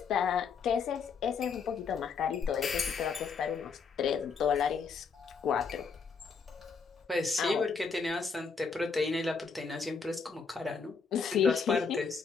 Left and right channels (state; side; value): quieter; right; 5.4 dB